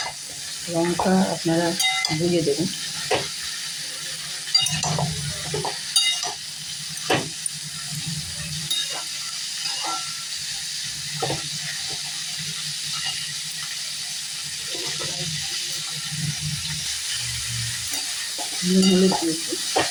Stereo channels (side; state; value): both; identical; correlation 1.00